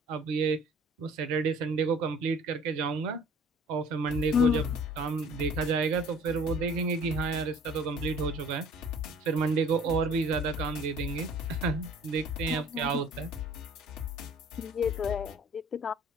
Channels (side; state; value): both; normal; correlation 0.51